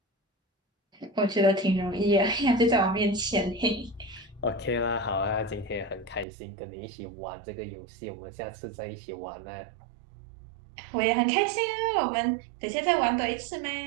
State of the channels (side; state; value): left; drops out; at 6.2 s